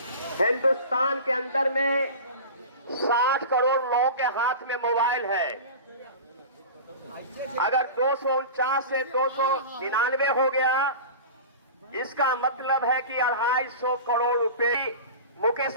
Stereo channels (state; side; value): inverted; both; correlation -0.33